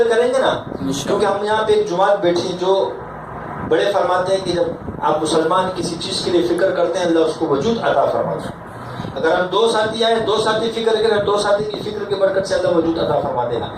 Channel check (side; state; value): both; identical; correlation 1.00